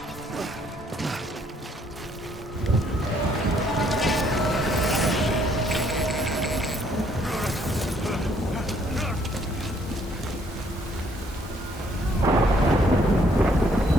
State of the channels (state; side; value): normal; both; correlation 0.66